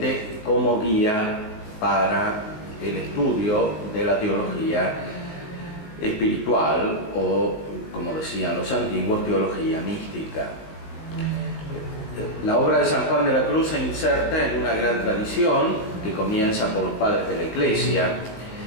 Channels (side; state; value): right; late; 19 ms